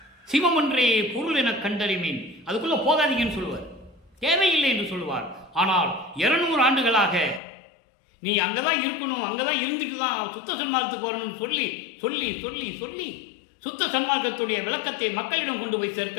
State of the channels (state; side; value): drops out; right; at 7.4 s